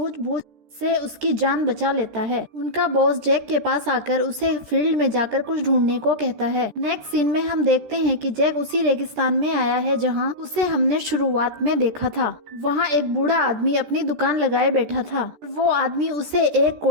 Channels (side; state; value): left; late; 13 ms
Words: से उसकी जान बचा लेता है। उनका बॉस जैक के पास आकर उसे फील्ड में जाकर कुछ ढूंढने को कहता है। नेक्स्ट सीन में हम देखते हैं कि जैक उसी रेगिस्तान में आया है जहां उसे हमने शुरुआत में देखा था। वहां एक बूढ़ा आदमी अपनी दुकान लगाए बैठा था। वो आदमी उसे एक